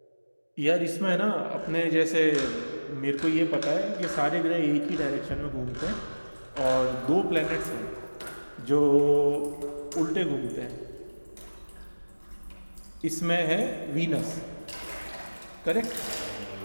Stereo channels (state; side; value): inverted; both; correlation -1.00